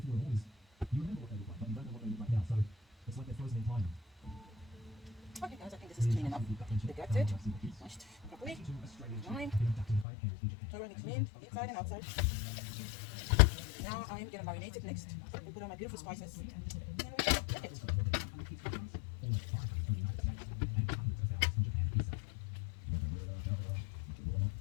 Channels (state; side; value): drops out; right; at 10.1 s